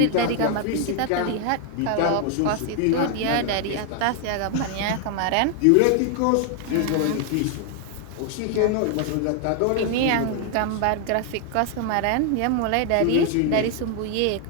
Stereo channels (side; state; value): both; different; correlation 0.00